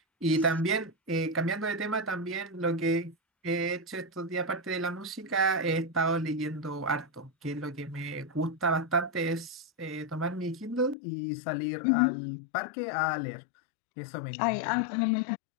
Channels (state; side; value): drops out; right; at 11.0 s